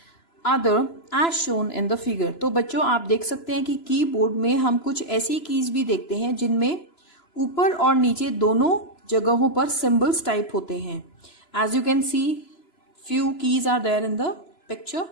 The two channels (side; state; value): right; late; 3.0 ms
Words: other as shown in the figure. तो बच्चों आप देख सकते हैं कि कीबोर्ड में हम कुछ ऐसी कीज भी देखते हैं जिनमें ऊपर और नीचे दोनों जगहों पर सिंबल्स टाइप होते हैं. As you can see few keys are there in the picture.